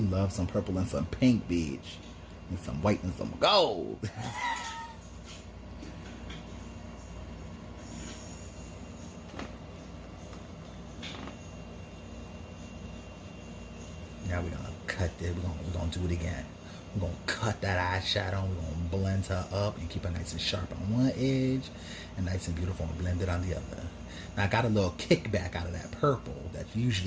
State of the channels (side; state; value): both; identical; correlation 1.00